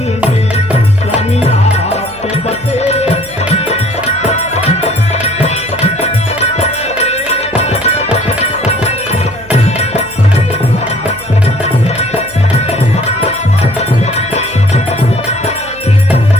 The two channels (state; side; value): noise; right; hum, 21 dB below the sound